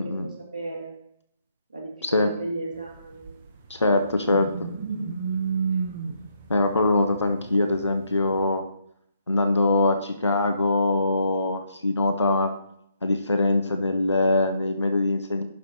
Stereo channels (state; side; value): inverted; both; correlation -0.74